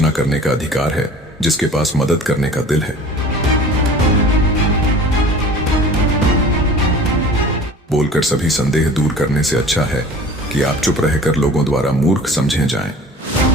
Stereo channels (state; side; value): normal; both; correlation 0.43